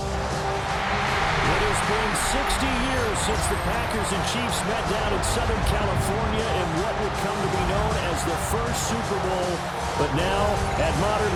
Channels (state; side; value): identical; both; correlation 1.00